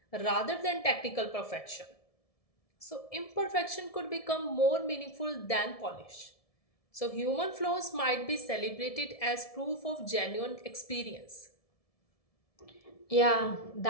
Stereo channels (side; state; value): right; late; 1.7 ms